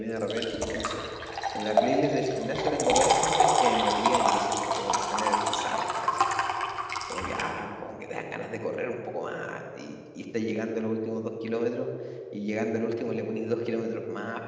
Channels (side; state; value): both; identical; correlation 1.00